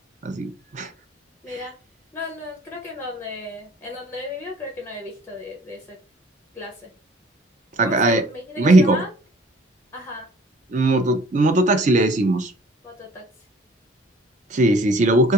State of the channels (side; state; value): both; normal; correlation 0.54